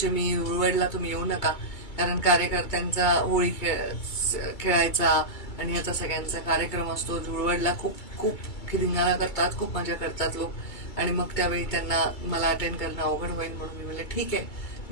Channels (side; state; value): right; late; 2.3 ms